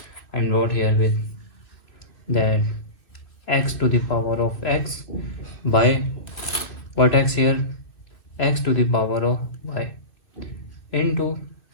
I'm wrote here with that x to the power of x by what x here? X to the power of y into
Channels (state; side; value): late; right; 2.4 ms